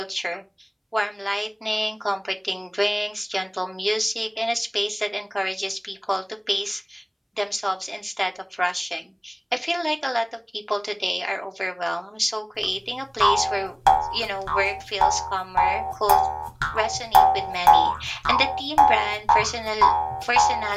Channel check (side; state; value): both; identical; correlation 1.00